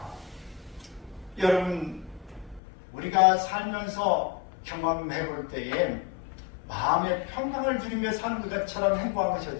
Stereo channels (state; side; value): drops out; right; at 2.6 s